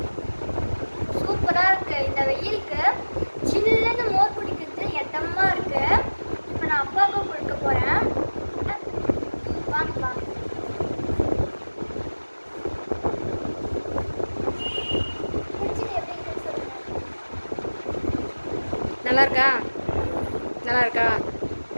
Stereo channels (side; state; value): both; inverted; correlation -1.00